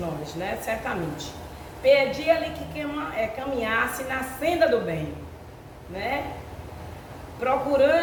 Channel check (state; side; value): identical; both; correlation 1.00